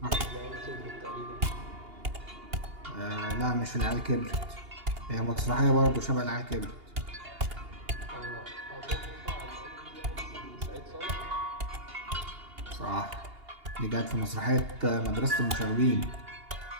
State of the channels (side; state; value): left; late; 2.8 ms